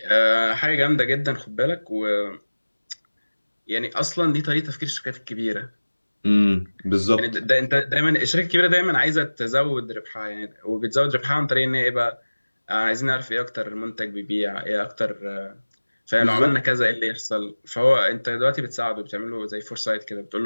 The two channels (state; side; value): inverted; both; correlation -1.00